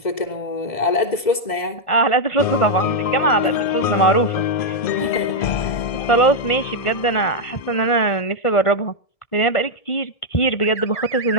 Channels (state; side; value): late; right; 2.0 ms